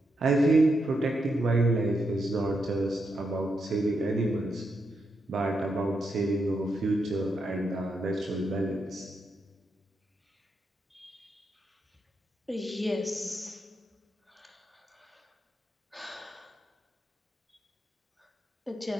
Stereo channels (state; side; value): normal; both; correlation 0.83